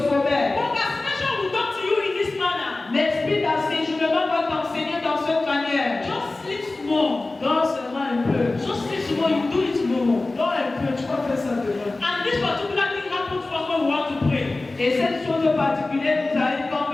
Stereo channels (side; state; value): right; quieter; 3.1 dB